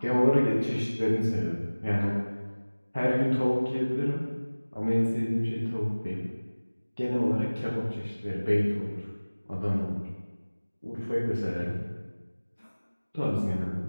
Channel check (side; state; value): both; inverted; correlation -1.00